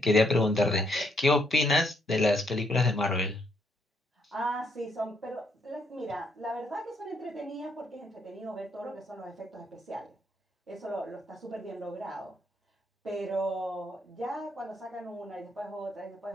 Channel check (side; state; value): both; normal; correlation 0.73